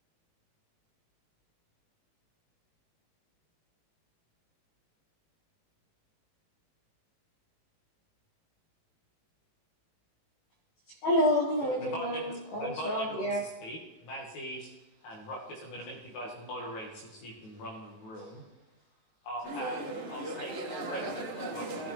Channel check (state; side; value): late; right; 18 ms